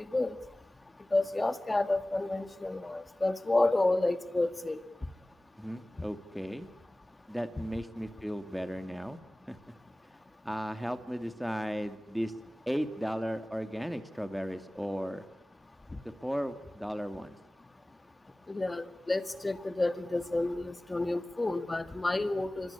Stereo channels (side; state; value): both; normal; correlation 0.98